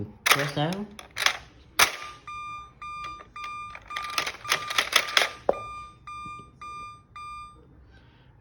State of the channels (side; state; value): both; identical; correlation 1.00